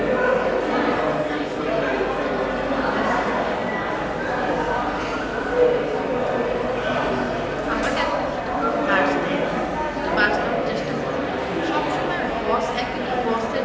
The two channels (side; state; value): both; identical; correlation 1.00